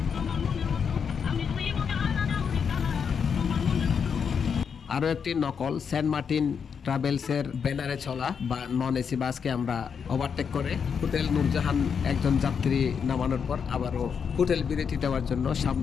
আরও একটি নকল সেন্ট মার্টিন ট্রাভেলসের ব্যানারে চলা বা নন এসি বাসকে আমরা ওভারটেক করে হোটেল নূরজাহান একজন যাত্রী নামানোর পর আবারও হোটেল বিরতি দেওয়ার জন্য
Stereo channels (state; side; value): quieter; right; 6.7 dB